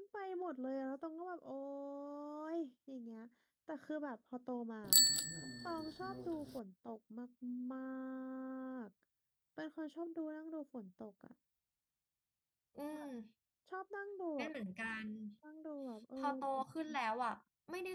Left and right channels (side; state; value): both; identical; correlation 1.00